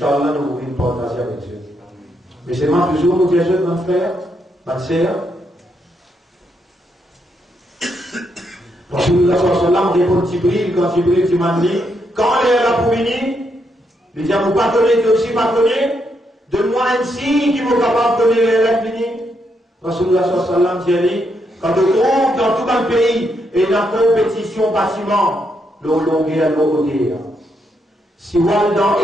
nous voulons partager avec Dieu. Mais c'est moi toujours nous dire, mon frère, ma sœur. Rasulullah sallallahu répond Jibril, quand Jibril dit, quand elle est là pour venir, il dit, vous pardonnez, tu aussi pardonné, donne-moi un signe qui vous capable de donner les lettres venir. Rasulullah sallallahu dit, quand on trouve dans tout un pays, et la compétition bâtiment, l'eau longueur, l'eau hauteur. Si vous allez dans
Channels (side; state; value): both; normal; correlation 0.79